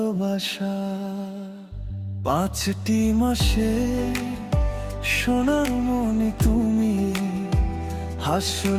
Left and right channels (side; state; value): both; identical; correlation 1.00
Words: 5টি মাসে সোনামণি তুমি,